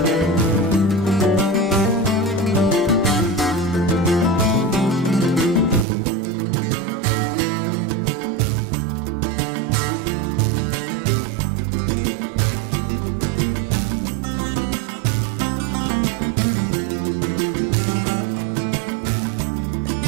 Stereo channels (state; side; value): drops out; left; at 5.9 s